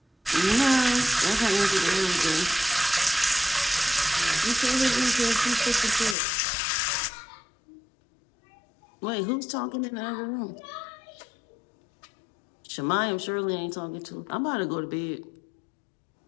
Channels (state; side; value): drops out; right; at 6.2 s